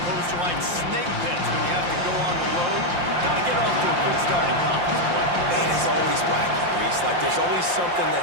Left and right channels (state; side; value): late; left; 5.7 ms